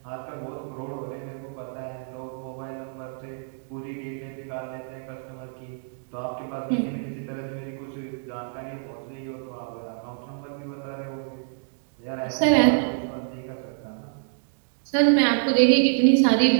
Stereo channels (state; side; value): silent; left; digital silence